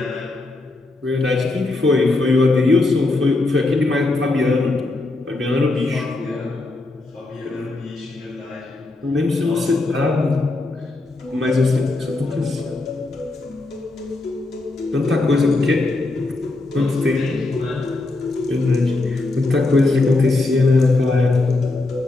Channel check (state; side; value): quieter; right; 3.1 dB